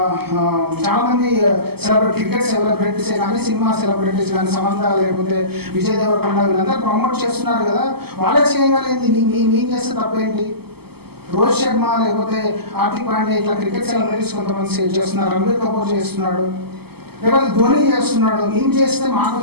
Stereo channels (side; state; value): left; late; 0.96 ms